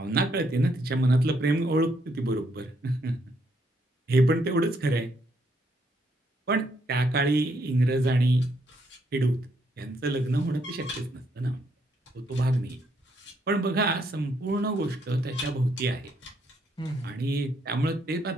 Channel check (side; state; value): both; normal; correlation 0.73